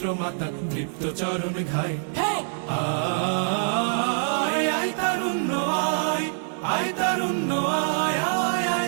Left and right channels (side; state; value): left; silent; 62 dB below the other